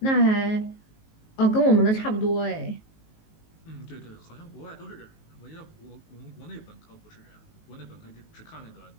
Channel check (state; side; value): late; right; 19 ms